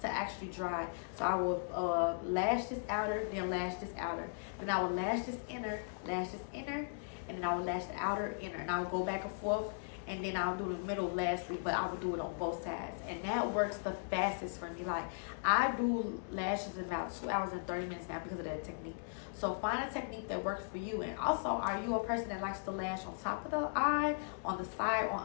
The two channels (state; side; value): silent; right; digital silence